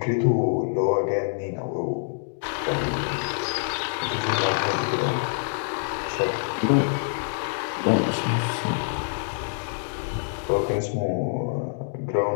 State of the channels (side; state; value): right; silent; digital silence